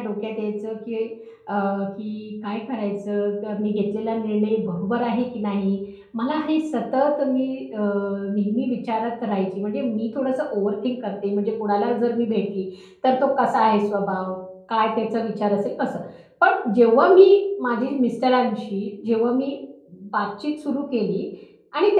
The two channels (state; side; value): identical; both; correlation 1.00